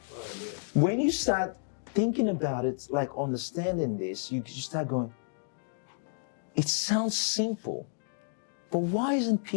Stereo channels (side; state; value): right; silent; digital silence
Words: When you start thinking about it, like understanding this, you start going, it sounds simple, but why isn't